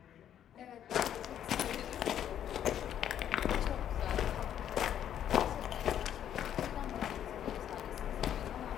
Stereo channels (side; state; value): right; quieter; 10.1 dB